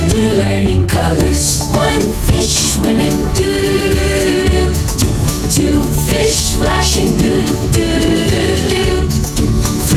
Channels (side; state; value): both; identical; correlation 1.00